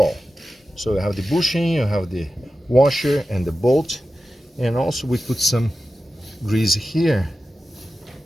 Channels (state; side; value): normal; both; correlation 0.93